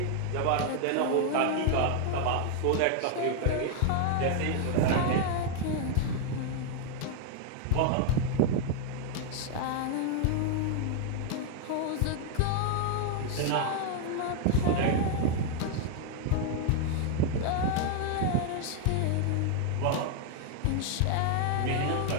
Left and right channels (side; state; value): both; different; correlation 0.00